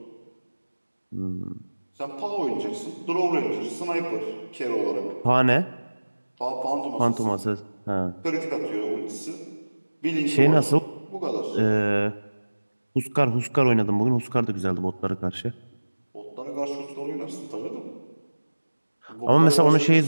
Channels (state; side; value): inverted; both; correlation -1.00